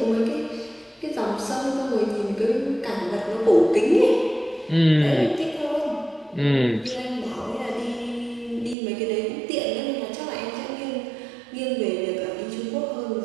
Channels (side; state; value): left; drops out; at 8.8 s